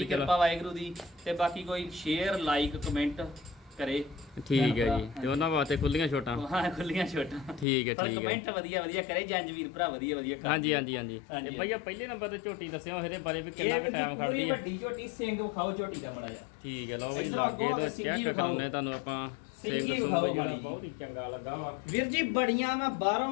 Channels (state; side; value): drops out; right; at 7.7 s